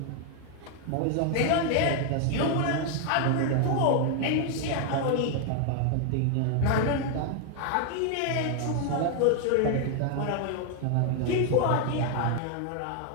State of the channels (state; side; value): different; both; correlation 0.00